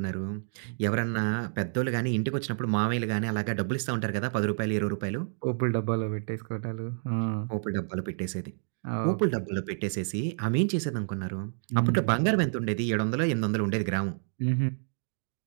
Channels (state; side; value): silent; left; digital silence